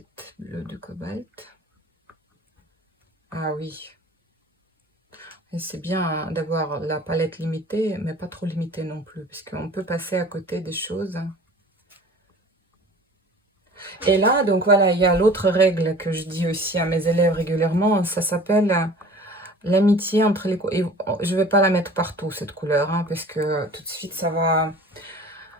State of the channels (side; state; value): both; normal; correlation 0.44